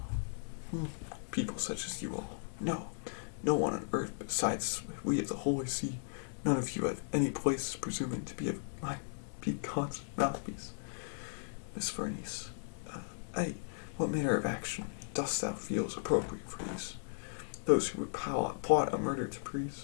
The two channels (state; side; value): silent; right; digital silence